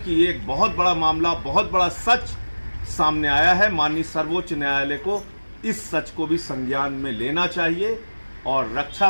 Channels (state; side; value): inverted; both; correlation -1.00